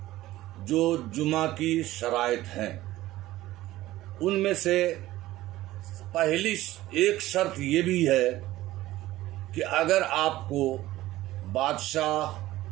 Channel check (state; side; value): quieter; left; 16.1 dB